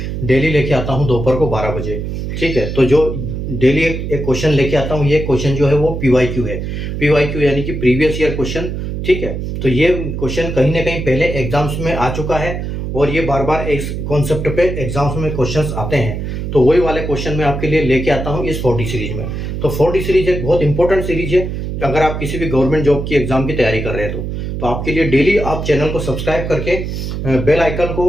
डेली लेके आता हूँ दोपहर को 12 बजे। ठीक है, तो जो डेली एक क्वेश्चन लेके आता हूँ, ये क्वेश्चन जो है वो PYQ है। PYQ यानी कि प्रीवियस ईयर क्वेश्चन। ठीक है, तो ये क्वेश्चन कहीं ना कहीं पहले एग्जाम्स में आ चुका है और ये बार बार इस कॉन्सेप्ट पे एग्जाम्स में क्वेश्चंस आते हैं। तो वही वाले क्वेश्चन मैं आपके लिए लेके आता हूँ इस 40 सीरीज में। तो 40 सीरीज एक बहुत इंपॉर्टेंट सीरीज है अगर आप किसी भी गवर्नमेंट जॉब की एग्जाम की तैयारी कर रहे हैं तो आपके लिए डेली आप चैनल को सब्सक्राइब करके बेल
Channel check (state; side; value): noise; right; hum, 4 dB below the sound